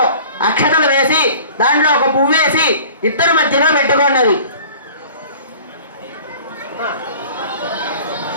అక్షతలు వేసి దాంట్లో ఒక పువ్వు వేసి ఇద్దరు మధ్యలో పెట్టుకున్నది.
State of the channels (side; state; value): both; inverted; correlation -0.45